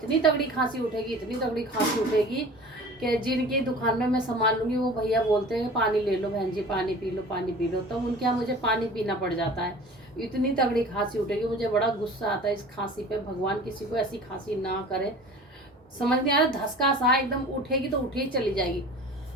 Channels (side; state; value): both; normal; correlation 0.42